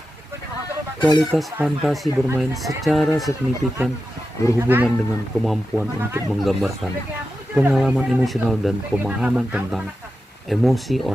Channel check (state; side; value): normal; both; correlation 0.91